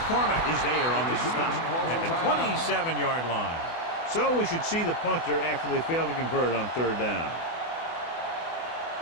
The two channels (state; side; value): late; right; 24 ms